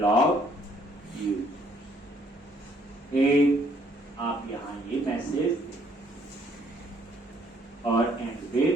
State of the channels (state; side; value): normal; both; correlation 0.65